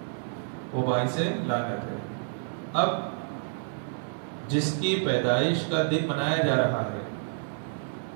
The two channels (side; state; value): left; silent; 59 dB below the other